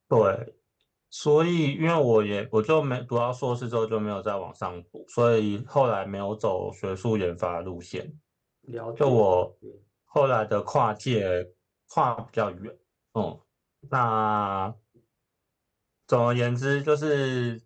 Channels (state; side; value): identical; both; correlation 1.00